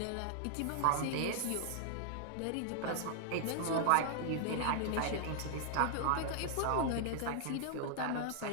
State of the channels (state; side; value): different; both; correlation -0.01